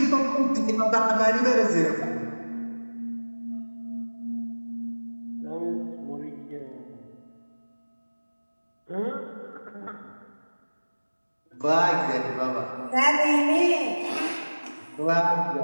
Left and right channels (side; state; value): both; inverted; correlation -1.00